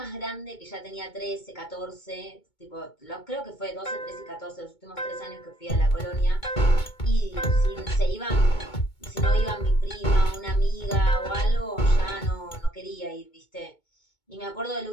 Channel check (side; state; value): right; late; 2.2 ms